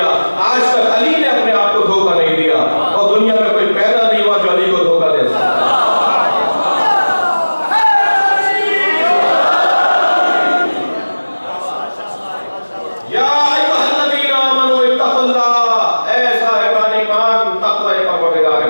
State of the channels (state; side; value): inverted; both; correlation -1.00